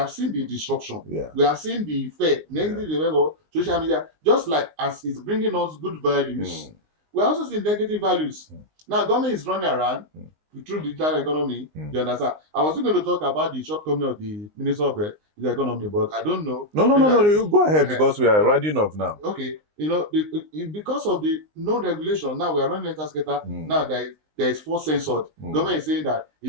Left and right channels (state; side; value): late; left; 19 ms